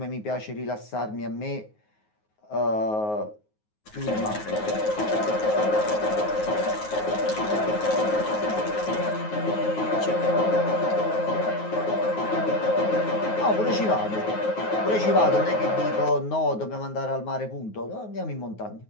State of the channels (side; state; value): right; late; 9.4 ms